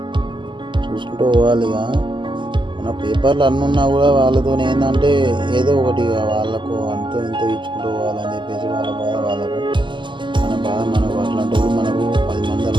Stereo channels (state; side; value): late; left; 0.23 ms